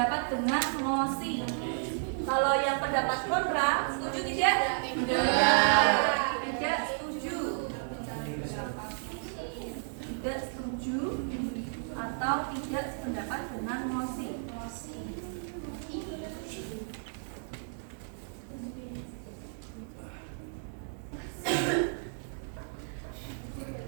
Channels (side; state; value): left; silent; digital silence